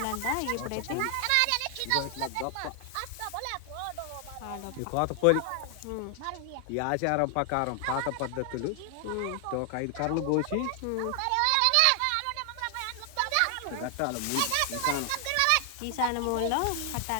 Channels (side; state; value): both; different; correlation 0.00